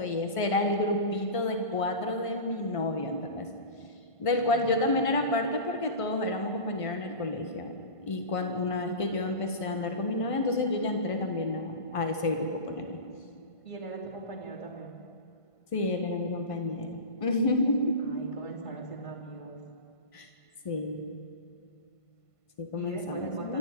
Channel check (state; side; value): late; right; 1.5 ms